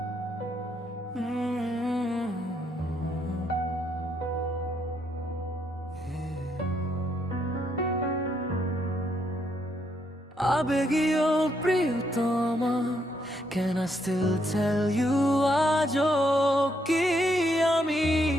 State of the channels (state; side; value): normal; both; correlation 0.75